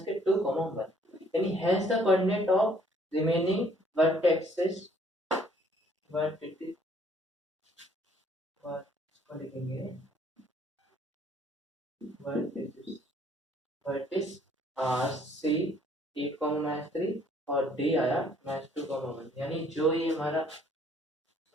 1, यानी hence the coordinate of remaining vertexes vertices are C 8, -3 और डी आया -2, 1, यानी जो ये हमारा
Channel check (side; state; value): both; normal; correlation 0.61